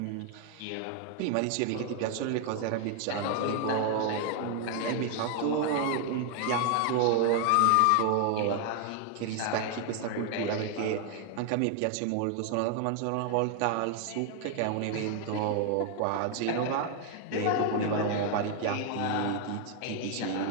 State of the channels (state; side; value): different; both; correlation 0.00